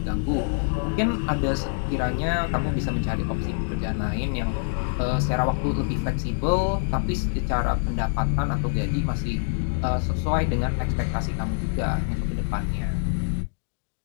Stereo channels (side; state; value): right; silent; digital silence